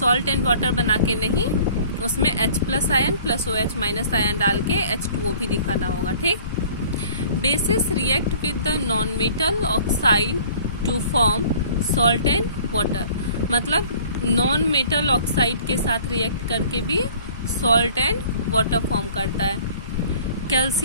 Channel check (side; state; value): both; inverted; correlation -0.51